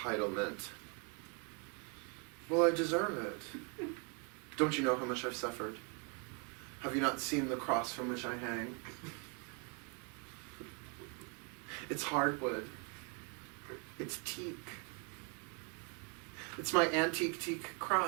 Well, I deserve it. Don't you know how much I've suffered? Have you not seen the cross from which I hang? It's hardwood. It's teak. It's my antique teak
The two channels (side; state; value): left; quieter; 36.2 dB